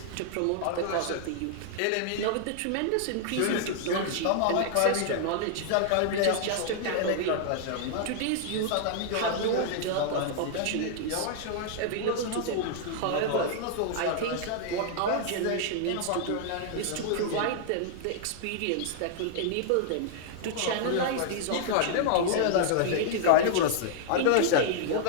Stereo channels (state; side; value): different; both; correlation -0.01